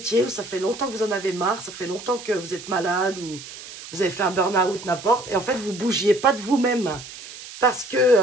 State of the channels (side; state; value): right; noise; hiss, 14 dB below the sound